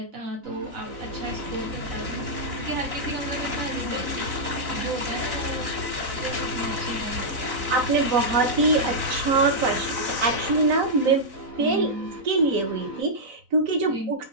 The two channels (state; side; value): late; left; 4.0 ms